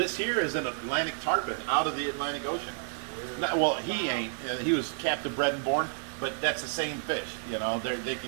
here is an Atlantic tarpon out of the Atlantic Ocean. Well, he ain't. He was captive bred and born, but that's the same fish. They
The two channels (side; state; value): left; silent; 58 dB below the other